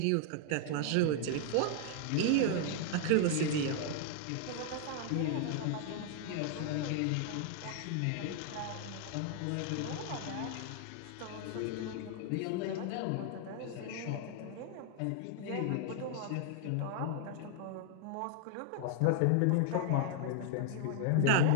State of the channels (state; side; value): different; both; correlation 0.00